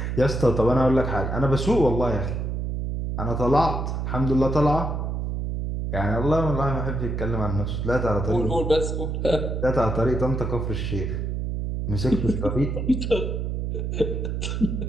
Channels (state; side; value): noise; right; hum, 2 dB below the sound